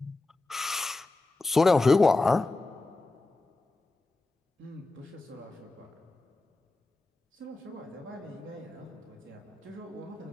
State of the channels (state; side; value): quieter; right; 3.2 dB